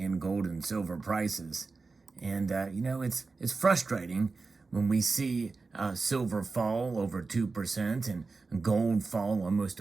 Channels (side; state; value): left; quieter; 4.1 dB